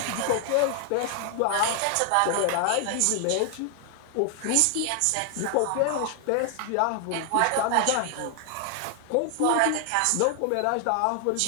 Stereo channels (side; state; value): both; different; correlation 0.00